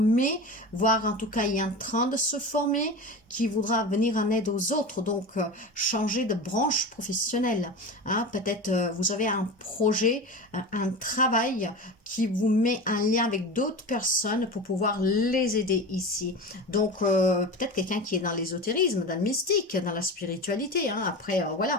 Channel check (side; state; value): both; normal; correlation 0.28